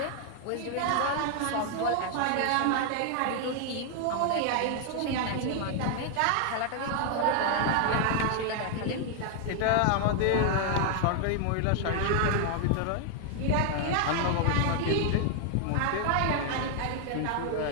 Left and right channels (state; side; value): different; both; correlation 0.00